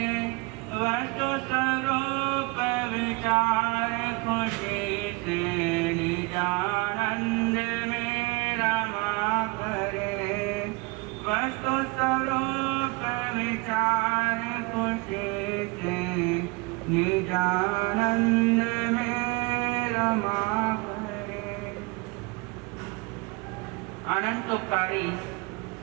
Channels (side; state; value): left; quieter; 25.9 dB